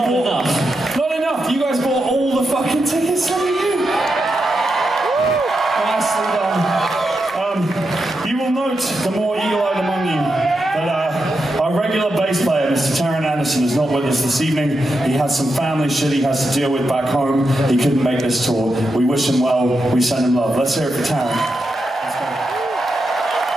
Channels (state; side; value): normal; both; correlation 0.86